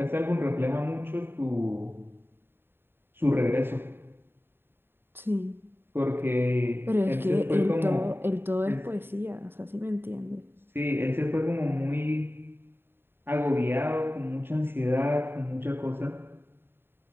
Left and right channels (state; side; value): late; left; 0.11 ms